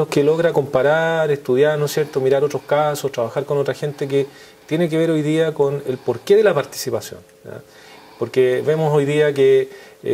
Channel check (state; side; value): identical; both; correlation 1.00